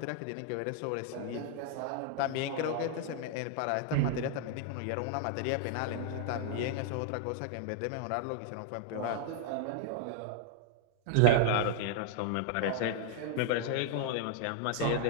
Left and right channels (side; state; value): both; different; correlation -0.01